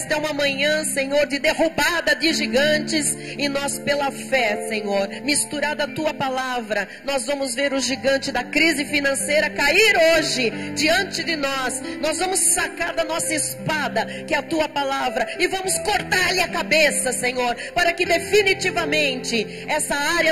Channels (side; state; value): both; identical; correlation 1.00